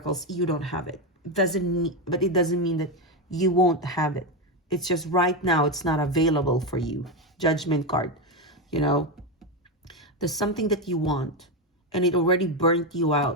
you don't have it. It doesn't mean that you won't have it. It's just right now it's not available for you. Judgment card, there's something that you want and it already burnt you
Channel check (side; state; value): both; normal; correlation 0.11